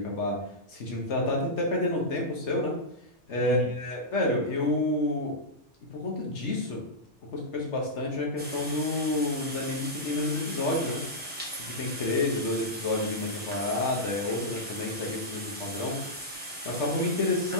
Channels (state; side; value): normal; both; correlation -0.10